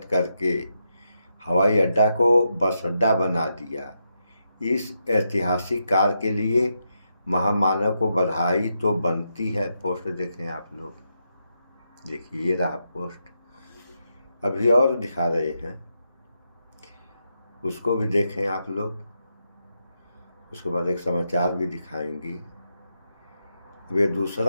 करके हवाई अड्डा को बस अड्डा बना दिया। इस ऐतिहासिक कार्य के लिए महामानव को बधाई तो बनती है। पोस्ट देखें आप लोग, देखिए ये रहा पोस्ट। अभी और दिखा रहे हैं, उसको भी देखें आप लोग। उसके बाद एक समाचार भी दिखाएंगे। अब ये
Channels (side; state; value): both; inverted; correlation -0.83